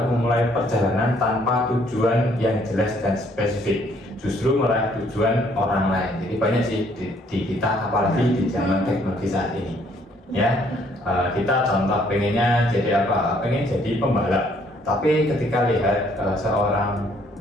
memulai perjalanan tanpa tujuan yang jelas dan spesifik, justru meraih tujuan orang lain. Jadi banyak sih di kita, apalagi di zaman teknologi saat ini ya. Kita contoh pengennya jadi apa? Pengen jadi pembalap, tapi ketika lihat seorang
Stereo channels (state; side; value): normal; both; correlation 0.65